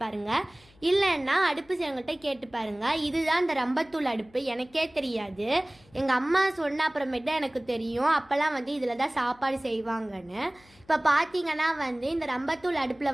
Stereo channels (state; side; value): noise; left; hum, 29 dB below the sound